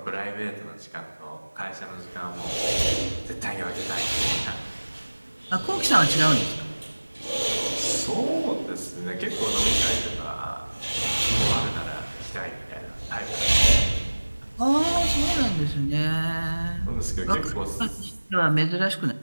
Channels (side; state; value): both; inverted; correlation -1.00